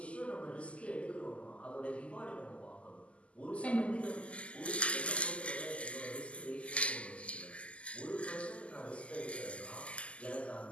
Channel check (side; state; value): right; late; 0.059 ms